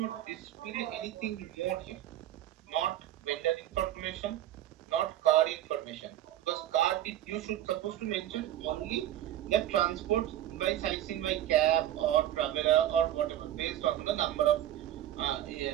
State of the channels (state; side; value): quieter; left; 12.5 dB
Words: display anything more here. Not vendor information, not card information. Because card you should supposed to mention only the transport by sightseeing by cab or traveler or whatever based on the number of